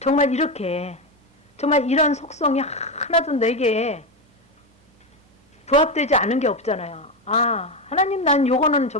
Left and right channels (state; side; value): normal; both; correlation 0.12